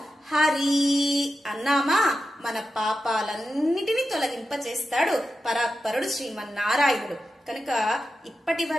హరి అన్నామా మన పాపాలన్నిటినీ తొలగింపచేస్తాడు పరాత్పరుడు శ్రీమన్నారాయణుడు. కనుక ఇప్పటి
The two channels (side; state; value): both; normal; correlation 0.90